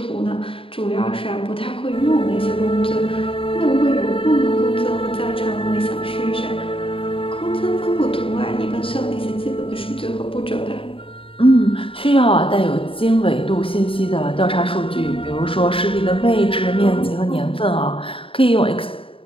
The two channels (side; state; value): right; late; 0.26 ms